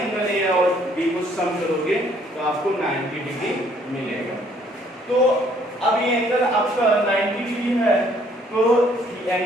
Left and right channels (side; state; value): both; normal; correlation 0.64